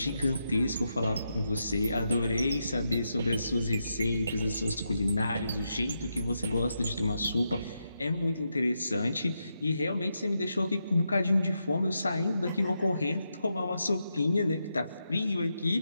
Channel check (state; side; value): inverted; both; correlation -0.84